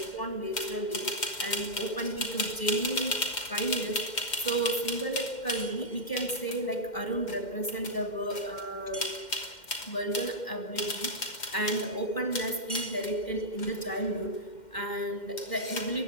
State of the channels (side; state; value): right; late; 2.1 ms